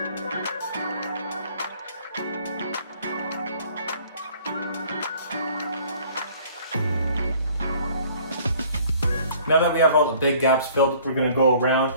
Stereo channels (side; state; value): both; inverted; correlation -0.55